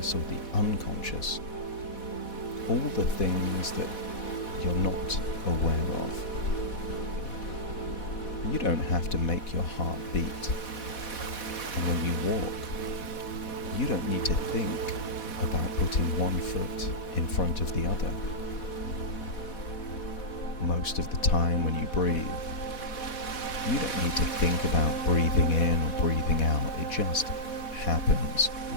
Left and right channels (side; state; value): right; late; 4.1 ms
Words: or the unconscious all the things that you're not aware of. You don't have to make your heart beat. And when you walk, you don't need to think about putting one foot in front of the other. Most of the time when you breathe, you don't need to think about breathing in or breathing out. It just happens